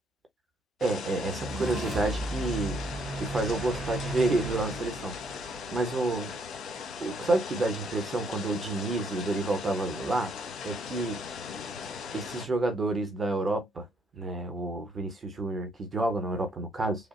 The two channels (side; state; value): both; normal; correlation 0.70